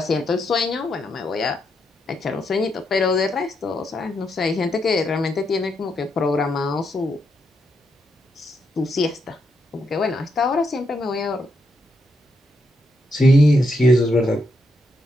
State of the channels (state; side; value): normal; both; correlation 0.80